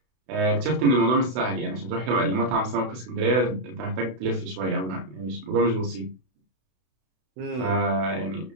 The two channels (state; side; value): late; left; 32 ms